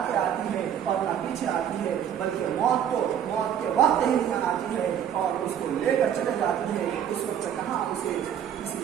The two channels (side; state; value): left; quieter; 9.4 dB